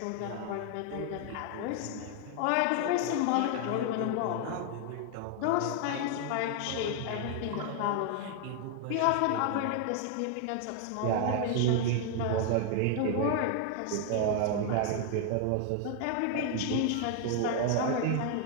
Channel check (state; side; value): different; both; correlation 0.00